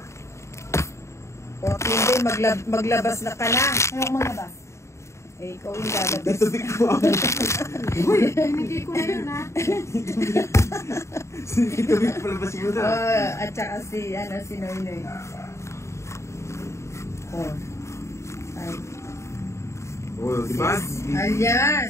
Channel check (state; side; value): late; right; 0.14 ms